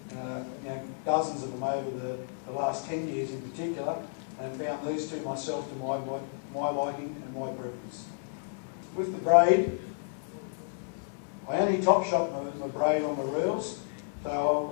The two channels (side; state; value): right; silent; 57 dB below the other